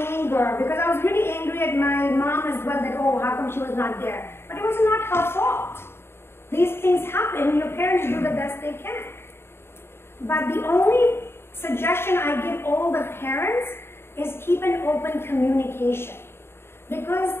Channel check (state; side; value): late; right; 0.12 ms